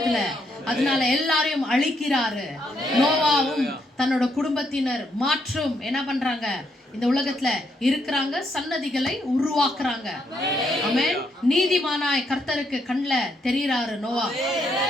அதனால எல்லாரையும் அழிக்கிறாரு. நோவாவும் தன்னோட குடும்பத்தினர் மாற்றும் என்ன பண்றாங்க? இந்த உலகத்துல இருக்கிறாங்க, சன்னதிகளை உருவாக்குறாங்க. ஆமென். நீதிமானாய் கர்த்தருக்கு கண்ணுல தெரியுறாரு நோவா.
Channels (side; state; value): both; normal; correlation 0.76